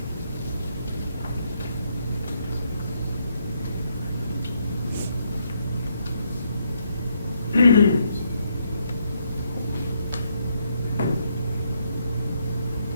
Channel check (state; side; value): inverted; both; correlation -0.75